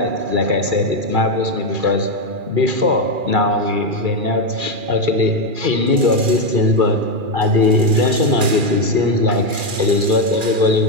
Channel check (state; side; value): late; left; 2.4 ms